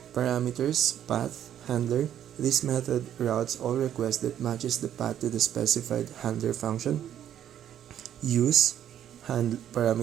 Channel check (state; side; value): quieter; left; 10.4 dB